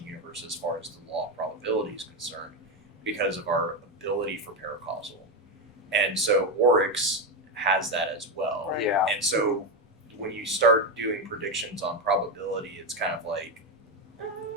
universe as far as the law of probability is concerned, because of our ability for paracausal, and so Oryx has that as well. Right. Yeah. And so when you start doing predictions on probability, it's kind of like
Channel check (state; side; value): normal; both; correlation 0.11